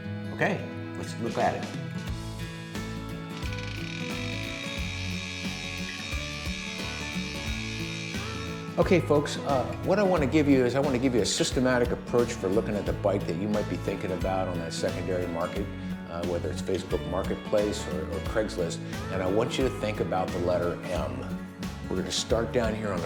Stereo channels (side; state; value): both; identical; correlation 1.00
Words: Okay, let's look at it. Okay, folks, what I want to give you is a systematic approach for looking at the bike that you might be thinking about on that secondary market, whether it's Facebook Marketplace or Craigslist, and I want you to think about the letter M. We're going to start down here on